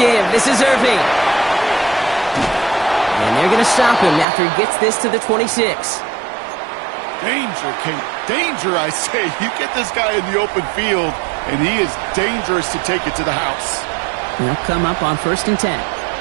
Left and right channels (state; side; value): drops out; left; at 4.2 s